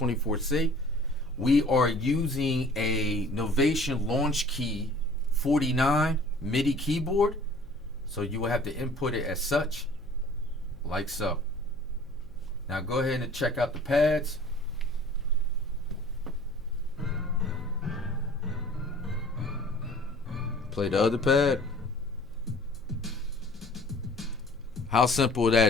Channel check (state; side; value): noise; left; hum, 22 dB below the sound